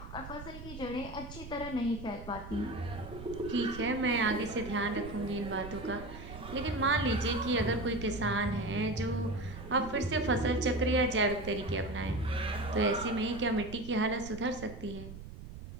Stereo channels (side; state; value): right; noise; rumble, 12 dB below the sound